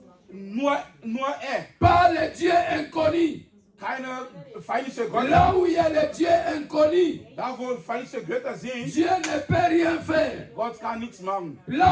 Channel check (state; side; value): identical; both; correlation 1.00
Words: Nur er. pas le Dieu inconnu. Keine feindliche Götter. Là où il y a le Dieu inconnu, Da wo feindliche Götter sind, Dieu ne peut rien faire. Gott kann nichts machen.